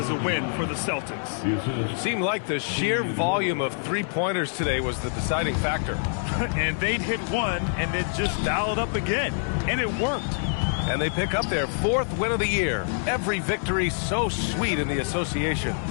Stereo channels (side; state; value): right; silent; 59 dB below the other